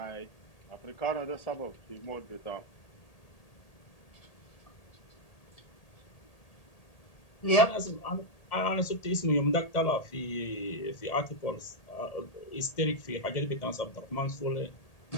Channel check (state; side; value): late; right; 1.8 ms